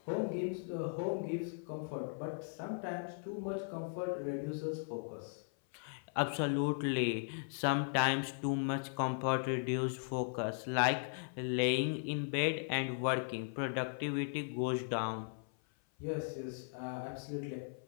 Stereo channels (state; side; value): silent; right; 53 dB below the other